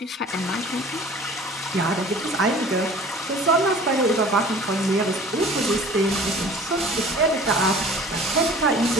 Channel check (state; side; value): normal; both; correlation 0.46